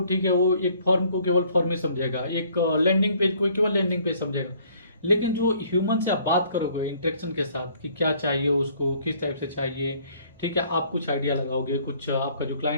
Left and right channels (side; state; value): both; inverted; correlation -0.60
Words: ठीक है, वो एक फॉर्म को केवल फॉर्म में समझेगा, एक लैंडिंग पेज को केवल लैंडिंग पेज समझेगा, लेकिन जो ह्यूमन से आप बात करोगे इंटरेक्शन के साथ कि क्या चाहिए उसको, किस टाइप से चाहिए, ठीक है, आप कुछ आइडिया लगाओगे, कुछ आपका जो